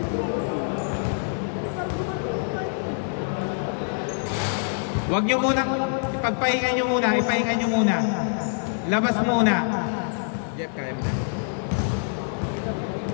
Huwag nyo munang, ipagpahinga nyo muna. Ipahinga nyo muna. Labas muna. Jeff, kaya mo na.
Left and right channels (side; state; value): right; silent; digital silence